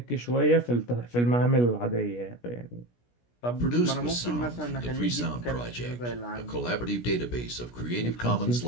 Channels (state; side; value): late; right; 17 ms